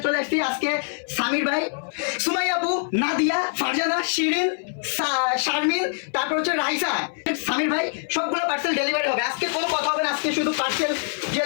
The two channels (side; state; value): right; silent; 63 dB below the other